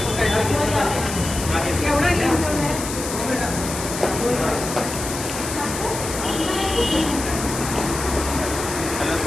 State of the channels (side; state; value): left; noise; hiss, 7 dB below the sound